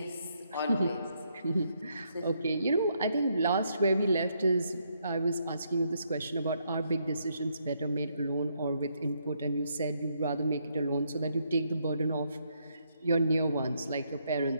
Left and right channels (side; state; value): both; inverted; correlation -0.75